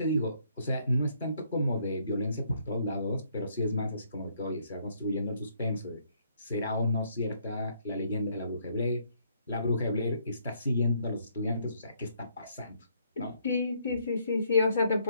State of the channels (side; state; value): both; inverted; correlation -0.69